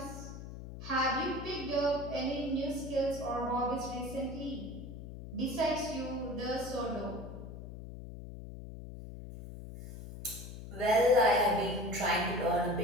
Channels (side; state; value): left; noise; hum, 11 dB below the sound